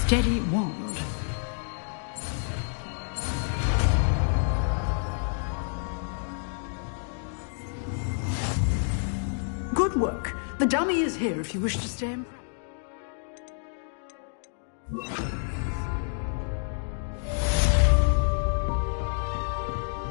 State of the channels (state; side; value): silent; right; digital silence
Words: wand. Good work. The dummy is here if you wish to stay in.